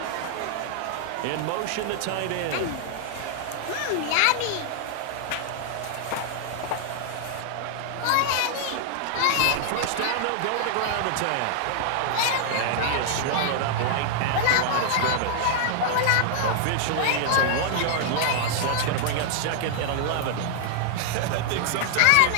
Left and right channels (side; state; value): both; different; correlation -0.01